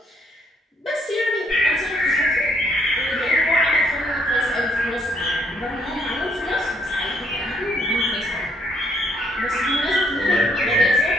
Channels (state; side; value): normal; both; correlation 0.69